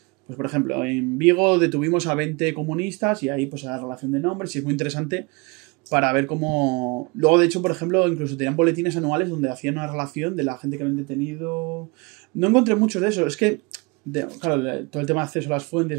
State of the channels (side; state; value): left; quieter; 28.0 dB